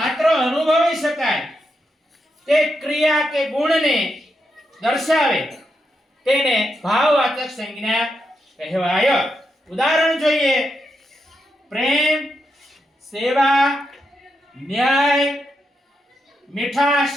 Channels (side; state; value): both; normal; correlation 0.84